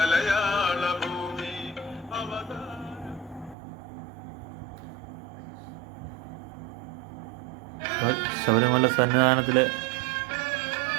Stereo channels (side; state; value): left; drops out; at 3.6 s